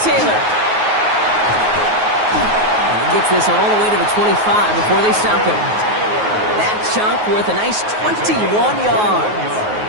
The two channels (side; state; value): left; late; 9.4 ms